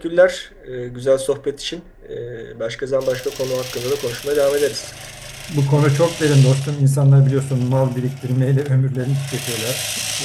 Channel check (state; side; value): identical; both; correlation 1.00